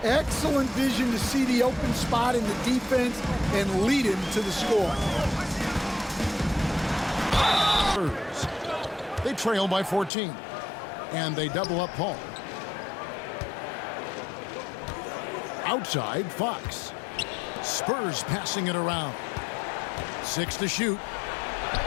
Excellent vision to see the open spot in the defense and lead him to the score. They trail by 14. And they double up Paul. Outside, Fox. Spurs passing it around. 6 to shoot.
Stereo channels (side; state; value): right; drops out; at 10.1 s